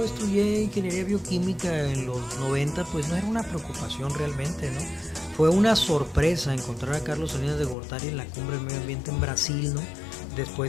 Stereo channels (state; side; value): drops out; right; at 7.8 s